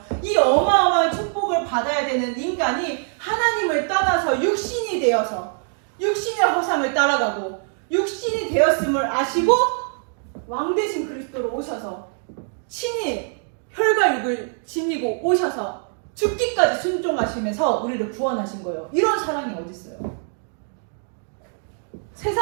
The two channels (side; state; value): left; silent; 61 dB below the other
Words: 이 어마어마한 축복을 받아야 되는 인간이 하나님을 떠나서 육신이 되어서 육신의 허상을 따라가고 육신이 되었음을 아시고 왕 대신 그리스도로 오셔서 친히 혈과 육을 지니고 오셔서 죽기까지 순종하시면서 우리를 구원하신 거예요. 이런 사랑이 어디 있어요?